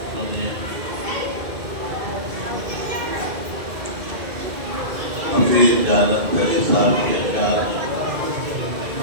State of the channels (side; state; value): left; late; 2.2 ms